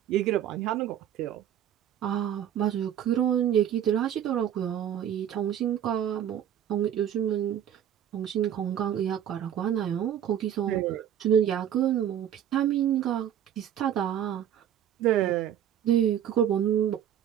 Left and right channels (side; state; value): left; quieter; 10.1 dB